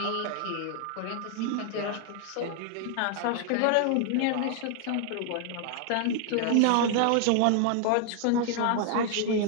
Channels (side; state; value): both; different; correlation 0.00